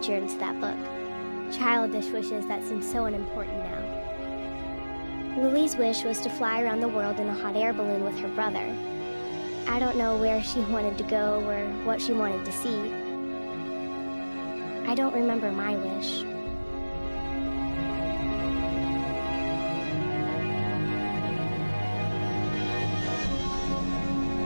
into that book. Childish wishes that seem so unimportant now. Lily's wish was to fly around the world in a hot air balloon with her brother. I don't know where she wanted to go or what she wanted to see. I don't remember my wish.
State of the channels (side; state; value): both; inverted; correlation -1.00